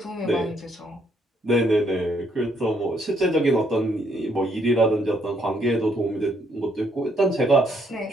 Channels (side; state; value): both; normal; correlation 0.71